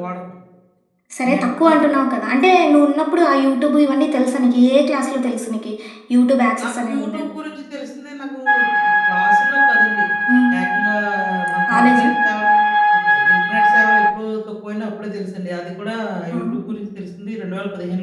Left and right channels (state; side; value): identical; both; correlation 1.00